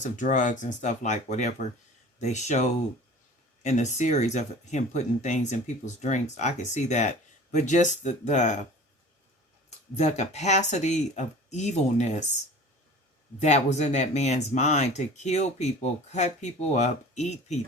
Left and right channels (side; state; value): both; normal; correlation 0.42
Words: of drugs and stuff, like whatever they showed in the series of him putting things in people's drinks. I could see that, but just the capacity of evilness that was in that man's mind to kill people, cut people up, eat